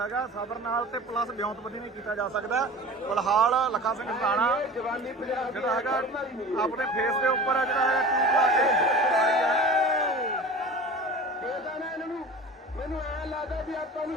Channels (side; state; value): both; normal; correlation 0.38